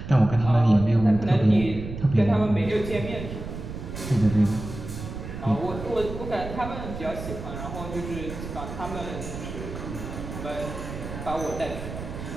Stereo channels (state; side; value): noise; right; rumble, 9 dB below the sound